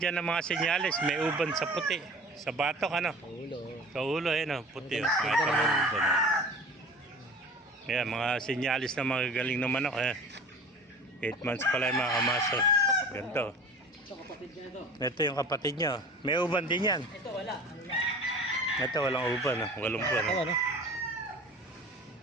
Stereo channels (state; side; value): normal; both; correlation 0.41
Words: dyan ng mga senyales. May uban sa puti. Sa batok, Sa ulo, puti. Mga senyalis na mga galing na manok. 8 months pala yung mga kamaso. Ganito. Ito, kapatid niya ito. Ito yung kapatid niya. May uban din yan. Ito, wala. Ito, walang uban. Walang uban.